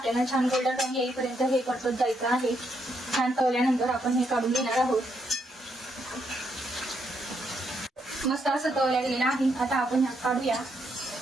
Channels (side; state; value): both; normal; correlation 0.77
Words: छान गोल्डन रंग येईपर्यंत हे परतत जायचं आहे. छान तळल्यानंतर आपण हे काढून घेणार आहोत. मस्त असं तळल्या गेलेलं आहे. आता आपण ह्यात काढूया.